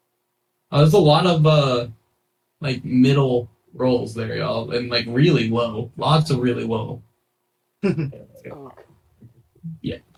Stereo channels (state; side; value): identical; both; correlation 1.00